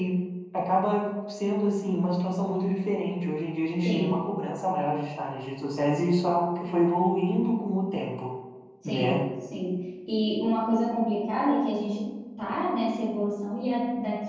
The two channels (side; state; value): both; identical; correlation 1.00